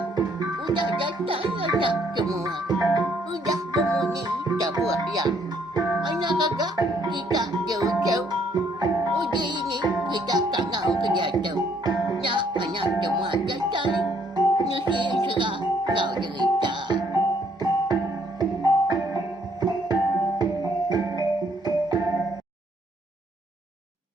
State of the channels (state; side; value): normal; both; correlation 0.67